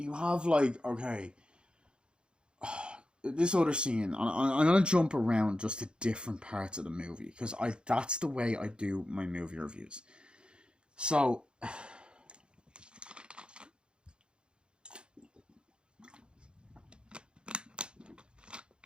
have, like, okay, this other scene, I'm going to jump around just to different parts of the movie, because that's the way I do my movie reviews. So,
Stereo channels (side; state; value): left; late; 0.052 ms